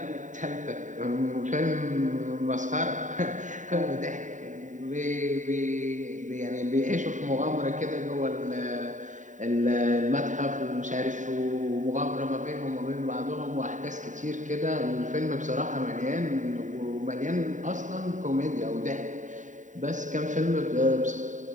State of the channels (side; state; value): left; late; 0.36 ms